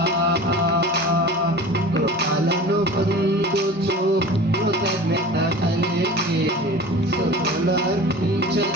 కృపలను పొందుచు కృతజ్ఞత కలిగి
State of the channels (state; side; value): normal; both; correlation 0.37